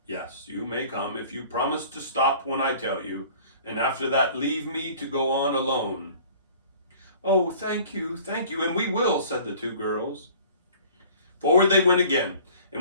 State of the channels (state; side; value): inverted; both; correlation -0.48